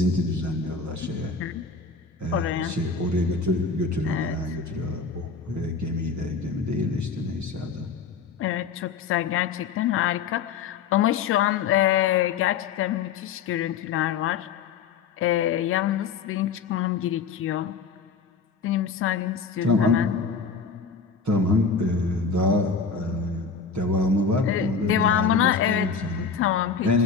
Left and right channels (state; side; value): quieter; right; 5.5 dB